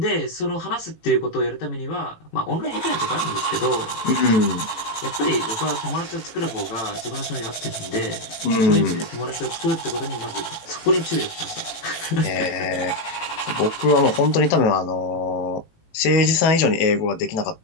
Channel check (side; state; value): right; late; 18 ms